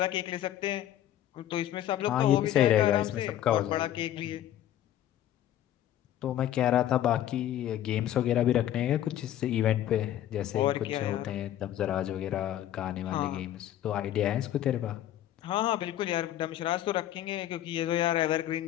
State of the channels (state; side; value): quieter; right; 12.2 dB